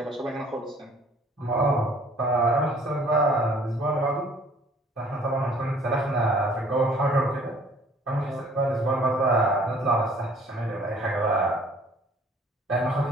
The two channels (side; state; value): both; normal; correlation 0.56